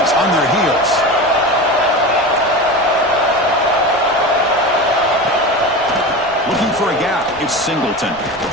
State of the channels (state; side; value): noise; right; rumble, 24 dB below the sound